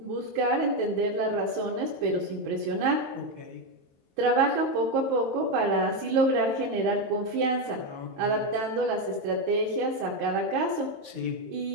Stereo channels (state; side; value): late; left; 22 ms